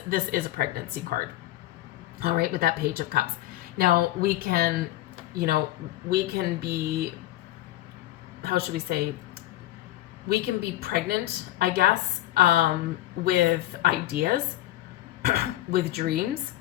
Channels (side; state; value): right; quieter; 15.2 dB